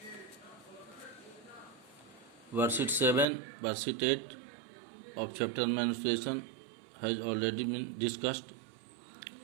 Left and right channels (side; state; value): left; drops out; at 3.2 s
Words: Worksheet 7, worksheet 8 of chapter menstruation has already been discussed.